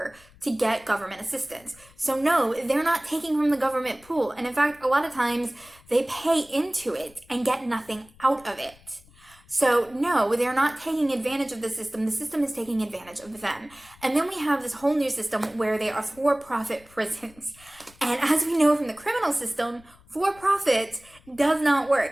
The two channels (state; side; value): noise; left; rumble, 27 dB below the sound